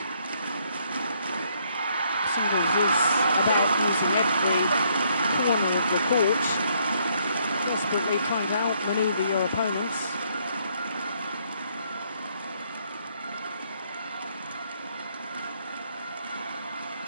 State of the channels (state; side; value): inverted; both; correlation -0.70